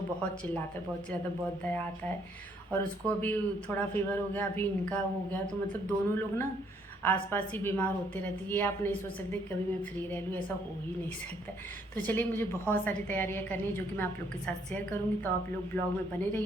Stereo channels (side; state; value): both; normal; correlation 0.68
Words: बहुत चिल्लाता है, बहुत दया आता है। और उसको अभी थोड़ा फीवर हो गया, अभी इनका हो गया, तो मतलब दोनों लोग ना आसपास ही बीमार होते रहते। ये आप नहीं सोच सकते कभी मैं फ्री रह लूँ, ऐसा हो ही नहीं सकता। तो चलिए, मुझे बहुत सारी तैयारियां करनी है जो कि मैं आप लोग के साथ शेयर करूँगी, तो आप लोग ब्लॉग में बने